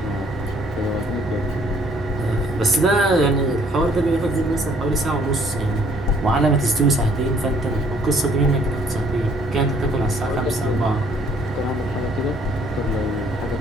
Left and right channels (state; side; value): normal; both; correlation 0.62